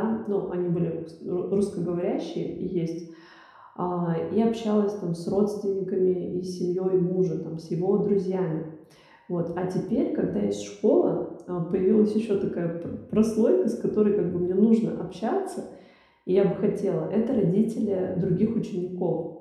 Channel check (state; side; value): identical; both; correlation 1.00